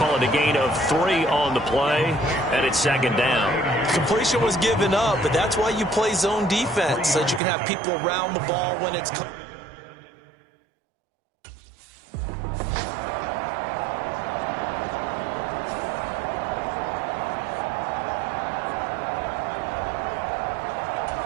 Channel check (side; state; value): left; drops out; at 7.4 s